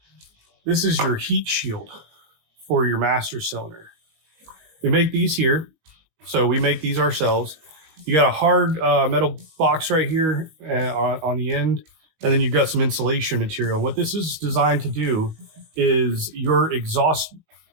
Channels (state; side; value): late; left; 19 ms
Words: This is your heat shield for your master cylinder. We make these here, so we make these ourselves. You got a hard metal box right here on the end, and then you've got some insulation material. What this is designed to do is your exhaust